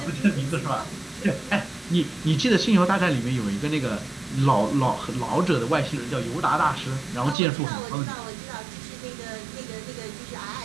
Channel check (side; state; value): left; drops out; at 7.4 s